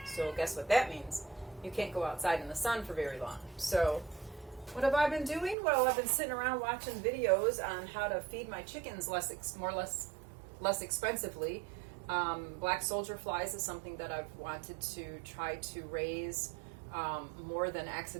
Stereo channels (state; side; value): drops out; left; at 5.6 s